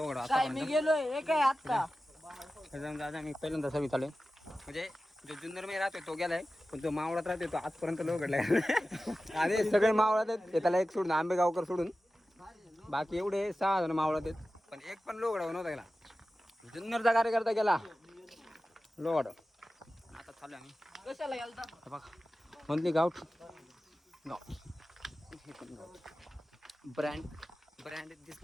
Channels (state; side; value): normal; both; correlation 0.95